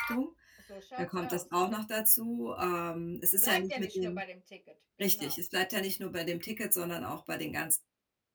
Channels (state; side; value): identical; both; correlation 1.00